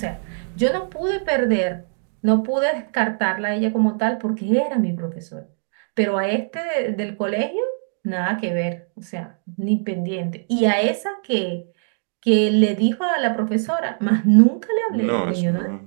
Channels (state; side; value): silent; left; digital silence